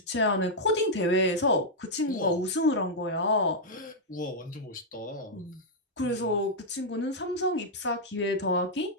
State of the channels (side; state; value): both; normal; correlation -0.04